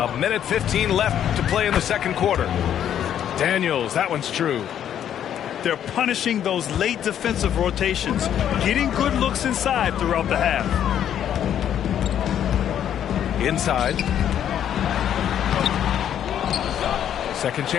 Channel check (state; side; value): quieter; right; 10.0 dB